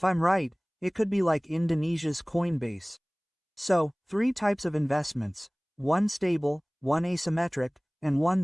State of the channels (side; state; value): both; identical; correlation 1.00